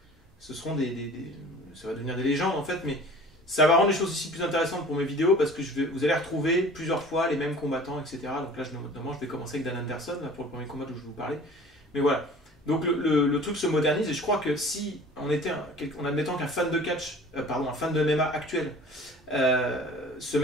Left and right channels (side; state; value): both; normal; correlation 0.45